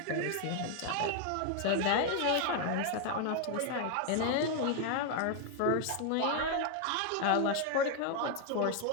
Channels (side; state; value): both; different; correlation 0.01